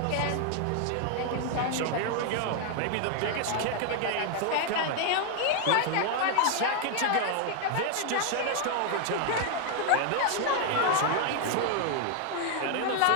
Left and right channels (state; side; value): different; both; correlation 0.01